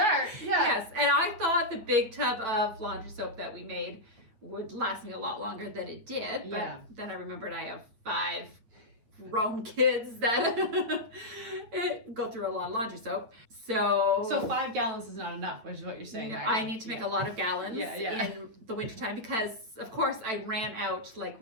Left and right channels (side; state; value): left; late; 9.0 ms